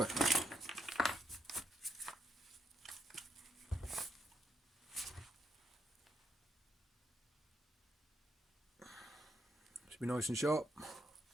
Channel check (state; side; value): normal; both; correlation 0.78